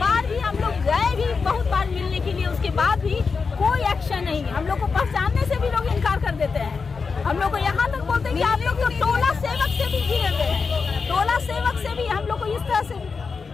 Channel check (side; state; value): right; quieter; 5.0 dB